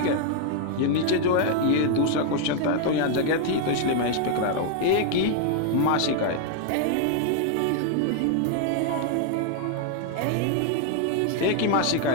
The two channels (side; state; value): both; different; correlation 0.00